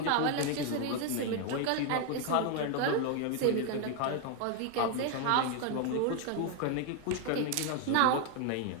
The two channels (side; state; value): both; different; correlation 0.01